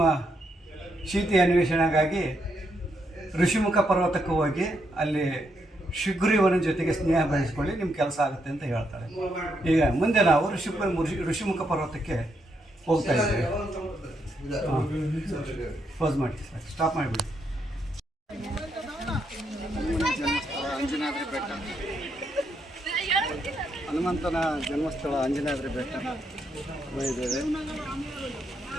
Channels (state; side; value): normal; both; correlation 0.78